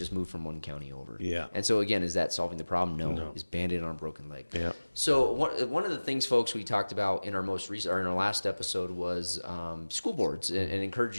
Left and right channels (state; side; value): inverted; both; correlation -1.00